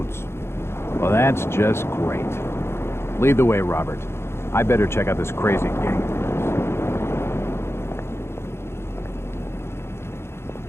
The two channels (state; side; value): late; right; 0.12 ms